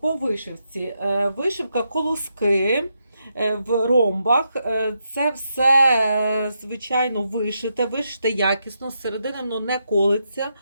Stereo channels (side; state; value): both; inverted; correlation -0.82